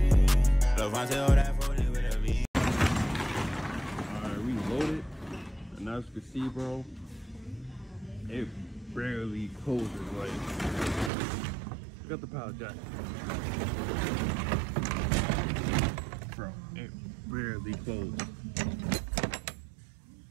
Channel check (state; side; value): drops out; left; at 11.1 s